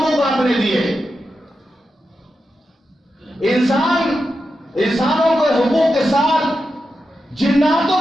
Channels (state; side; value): normal; both; correlation 0.89